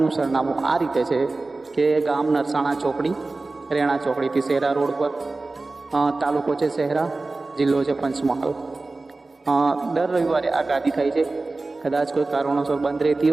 સરનામું આ રીતે છે કે ગામ નરસાણા ચોકડી, રેણા ચોકડીથી શહેરા રોડ પર, તાલુકો છે શહેરા, જિલ્લો છે પંચમહાલ. દર રવિવારે આ ગાદી થાય છે. કદાચ કોઈ કારણોસર બંધ રહેતી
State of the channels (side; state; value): left; quieter; 3.4 dB